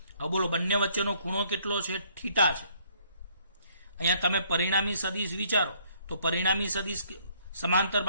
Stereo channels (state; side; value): inverted; both; correlation -0.65